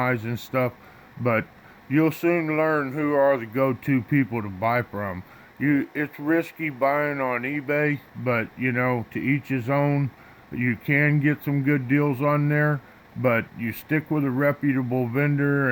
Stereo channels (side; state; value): both; identical; correlation 1.00